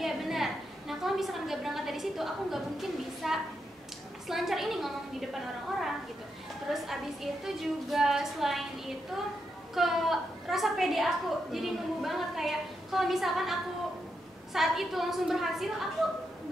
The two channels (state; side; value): normal; both; correlation 0.83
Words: benar. Nah kalau misalkan nggak berangkat dari situ, aku nggak mungkin bisa selancar ini ngomong di depan orang-orang gitu. Terus abis itu juga selain itu ke rasa pede aku jadi numbuh banget, kayak kalau misalkan aku saat itu langsung berhasil, aku